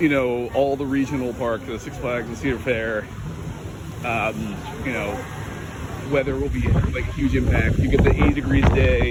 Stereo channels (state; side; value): identical; both; correlation 1.00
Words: know, all the regional parks, the Six Flags, the Cedar Fair, you know, weather will be like a huge impact. You get the 80 degrees